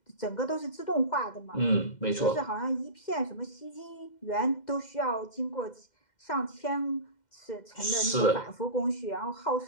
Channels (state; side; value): late; right; 2.1 ms